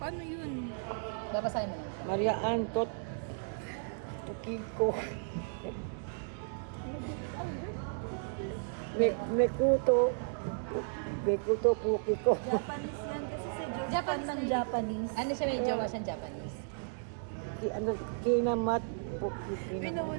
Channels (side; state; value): left; silent; digital silence